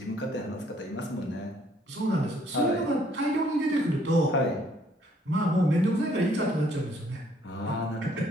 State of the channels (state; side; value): normal; both; correlation 0.64